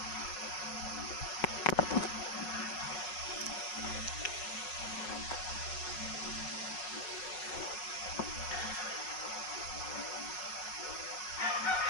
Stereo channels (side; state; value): right; late; 5.4 ms